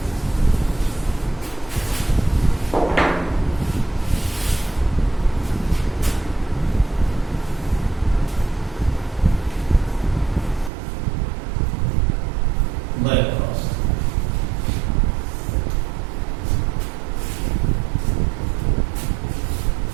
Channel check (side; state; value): left; drops out; at 10.7 s